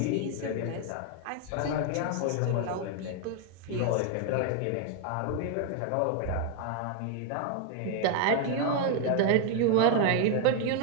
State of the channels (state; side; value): different; both; correlation 0.01